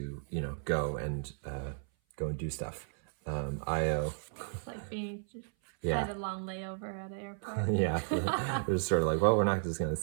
go and do stuff. Io, It's like being had a long layover at the airport. They're just sort of like, well, we're not just gonna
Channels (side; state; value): left; silent; 55 dB below the other